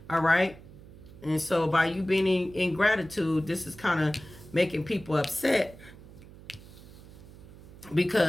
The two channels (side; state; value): right; noise; hum, 19 dB below the sound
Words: All right? And so by you being in gratitude, this is kind of making people upset